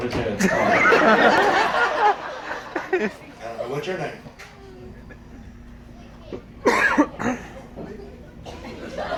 his head. What's your name?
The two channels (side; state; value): both; identical; correlation 1.00